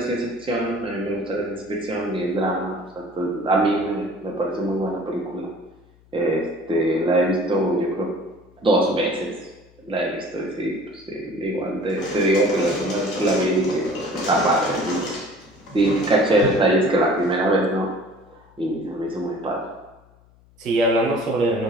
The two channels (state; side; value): noise; left; hum, 29 dB below the sound